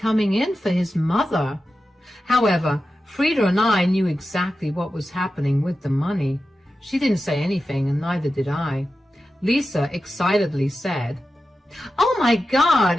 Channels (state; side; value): normal; both; correlation 0.92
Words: in for his mother. However, Frida and I knew exactly what was happening with the money. She didn't say anything, and neither did I. Lisa excitedly said, "Oh my